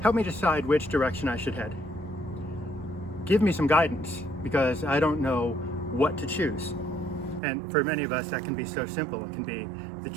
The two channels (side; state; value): left; drops out; at 7.4 s